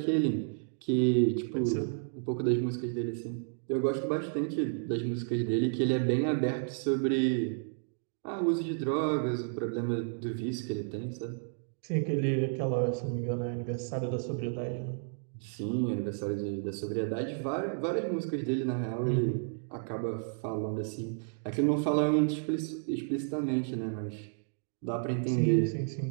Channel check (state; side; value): silent; left; digital silence